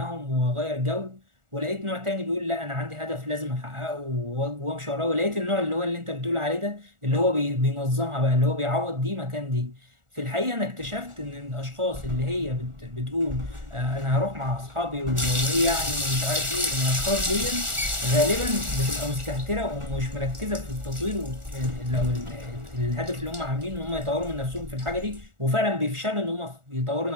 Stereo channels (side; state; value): left; late; 1.4 ms